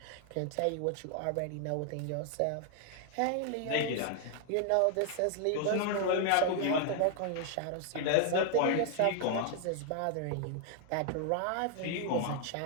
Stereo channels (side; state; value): both; different; correlation 0.00